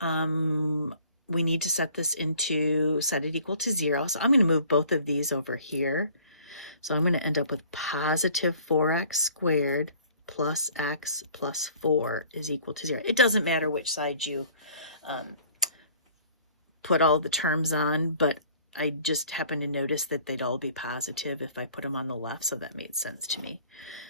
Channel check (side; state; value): both; inverted; correlation -0.53